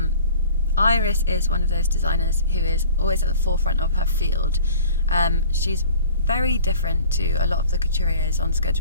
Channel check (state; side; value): inverted; both; correlation -0.48